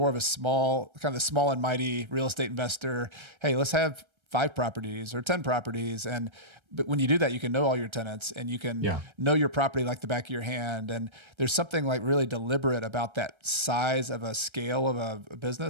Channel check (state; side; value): late; left; 1.3 ms